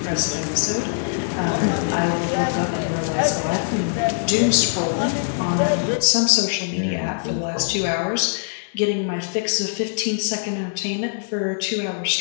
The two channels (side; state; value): right; silent; digital silence